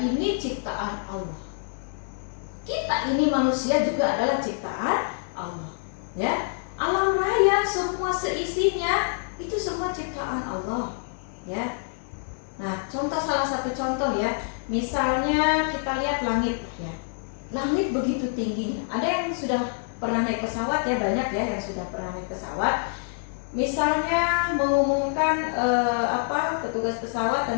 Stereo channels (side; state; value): right; silent; digital silence